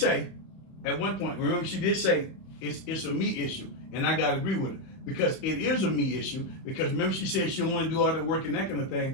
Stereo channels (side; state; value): right; late; 31 ms